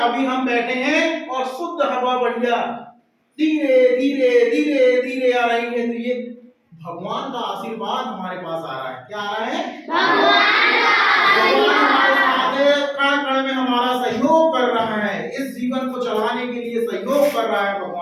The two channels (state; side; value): identical; both; correlation 1.00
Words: अभी हम बैठे हैं और शुद्ध हवा बढ़िया धीरे धीरे धीरे धीरे आ रही है, तो ये भगवान का आशीर्वाद हमारे पास आ रहा है। क्या आ रहा है, भगवान हमारे साथ है, कण कण में हमारा सहयोग कर रहा है, इस जीवन को चलाने के लिए सहयोग कर रहा है